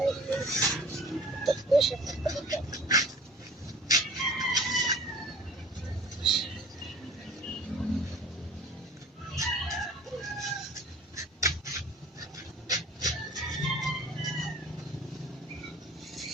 Ito po siya.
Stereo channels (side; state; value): both; normal; correlation 0.47